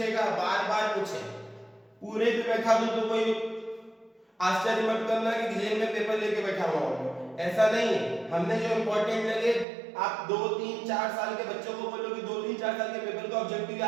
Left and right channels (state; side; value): drops out; left; at 9.7 s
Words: बार बार पूछे। पूरे भी बैठा दूं तो कोई आश्चर्य मत करना कि जेल में पेपर लेके बैठा हुआ हूं, ऐसा नहीं है। हमने जो इंपॉर्टेंट लगे, आप 2, 3, 4 साल के बच्चों को बोलो कि 2, 3, 4 साल के पेपर का ऑब्जेक्टिव